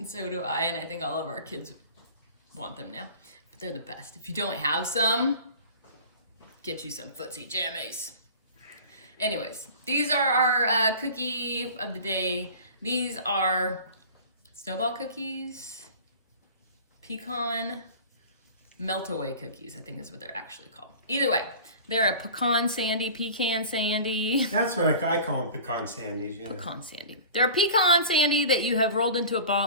so do I, and I think all of our kids want them now. But they're the best. If you don't have some, get you some footsie jammies. Anyways, these are our cookie of the day. These are snowball cookies, pecan melt-away cookies, I think is what they're actually called. Either way, they're a pecan sandy. That's what I call them, pecan sandies. Yeah. Pecan Sandie. They're a pecan sandy that you have rolled into a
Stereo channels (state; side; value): inverted; both; correlation -0.40